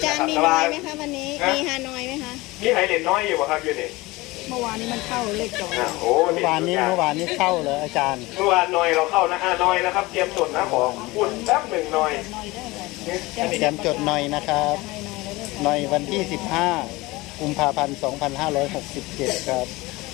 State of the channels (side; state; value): right; quieter; 21.4 dB